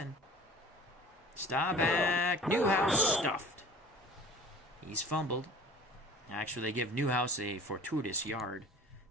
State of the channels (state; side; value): normal; both; correlation 0.43